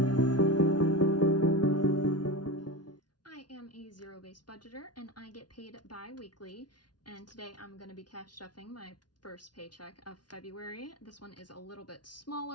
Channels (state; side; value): late; right; 0.70 ms